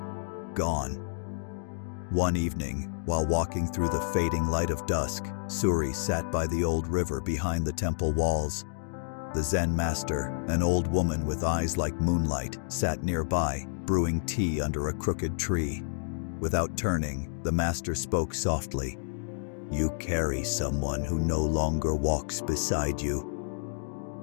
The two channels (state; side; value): silent; right; digital silence